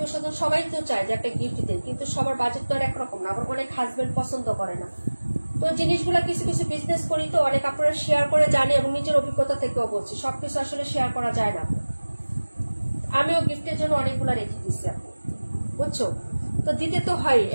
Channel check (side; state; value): both; inverted; correlation -1.00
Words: স্বজন সবাই তো চায় যে একটা গিফট দেয়, কিন্তু সবার বাজেট তো আর একরকম না। আবার অনেক হাজবেন্ড পছন্দ করে না। তো জিনিসগুলো কিছু কিছু বিজনেস করি তো অনেক আপনারা শেয়ার করে জানি, এবং নিজের অভিজ্ঞতা থেকেও বলছি, সবকিছু আসলে শেয়ার করা যায় না। আমিও গিফটের জন্য অনেকগুলো রেখে দিচ্ছি আপু, বুঝছো? তো দিতে তো হয়,